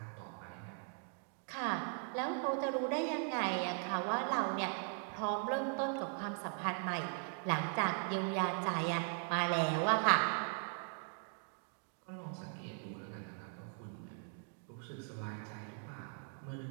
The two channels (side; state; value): left; silent; 51 dB below the other